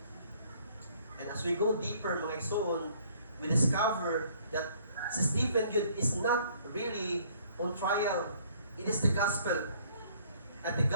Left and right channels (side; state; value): both; inverted; correlation -0.60